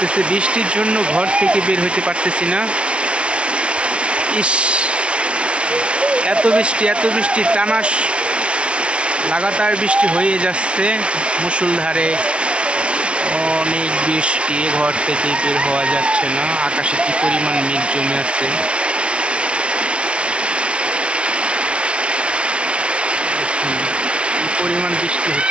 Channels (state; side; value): late; left; 0.059 ms